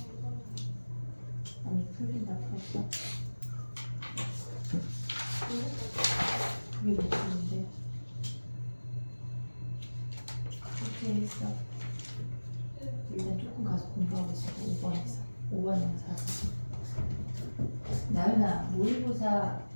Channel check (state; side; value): inverted; both; correlation -1.00